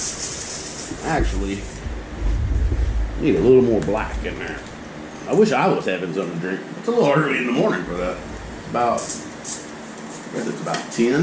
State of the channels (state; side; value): identical; both; correlation 1.00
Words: Actually, need a little more black in there. I wish I was having something to drink. It's a little early in the morning for that. I guess it's about 10